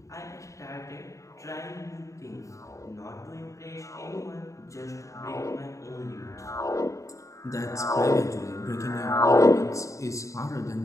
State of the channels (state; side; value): late; right; 0.15 ms